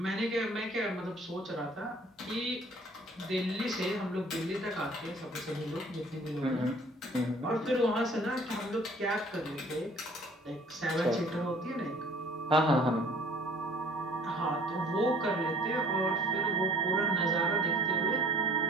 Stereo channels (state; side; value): normal; both; correlation 0.53